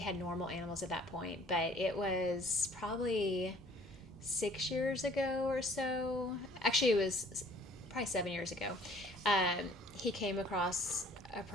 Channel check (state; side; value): normal; both; correlation 0.55